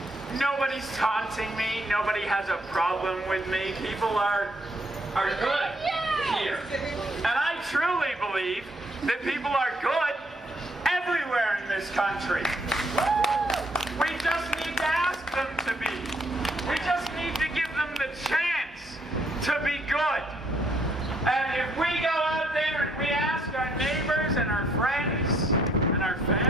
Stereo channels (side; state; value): both; normal; correlation 0.70